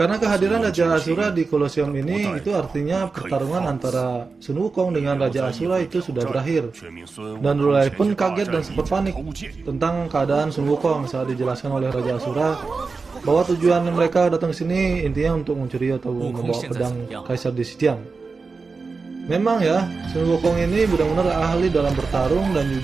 kehadiran Raja Asura di Kolosium ini itu artinya pertarungan antara Sun Wukong dengan Raja Asura itu sudah berakhir. Dan Rulai pun kaget dan sempat panik tentang keadaan Sun Wukong saat dijelaskan oleh Raja Asura bahwa tujuan mereka datang ke sini intinya untuk mencuri atau membawa pedang Kaisar di Sitian. Memang ya, Sun Wukong ini benar-benar ahli dalam bertarung dan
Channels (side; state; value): left; quieter; 4.4 dB